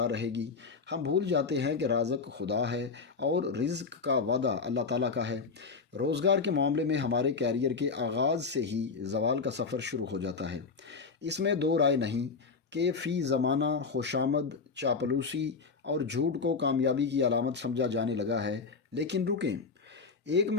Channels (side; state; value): right; quieter; 4.8 dB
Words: رہے گی۔ ہم بھول جاتے ہیں کہ رازق خدا ہے اور رزق کا وعدہ اللہ تعالیٰ کا ہے۔ روزگار کے معاملے میں ہمارے کیریئر کے آغاز سے ہی زوال کا سفر شروع ہو جاتا ہے۔ اس میں دو رائے نہیں کہ فی زمانہ خوشامد، چاپلوسی اور جھوٹ کو کامیابی کی علامت سمجھا جانے لگا ہے، لیکن رکیں، ایک